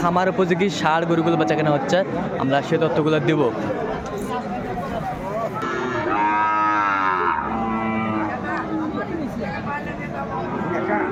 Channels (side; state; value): both; identical; correlation 1.00